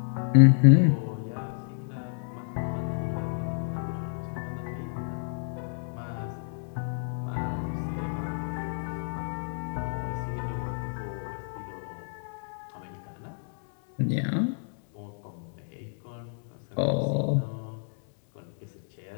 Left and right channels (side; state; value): right; silent; digital silence